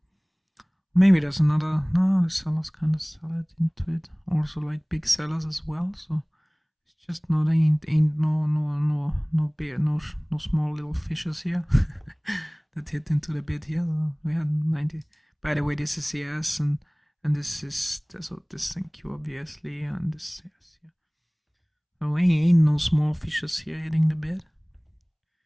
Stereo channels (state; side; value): identical; both; correlation 1.00